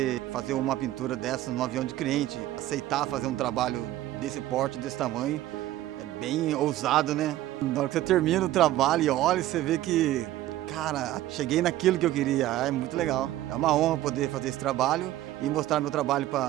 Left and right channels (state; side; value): quieter; left; 14.6 dB